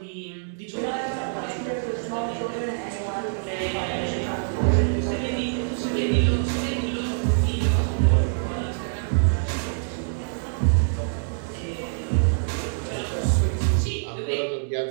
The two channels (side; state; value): left; silent; digital silence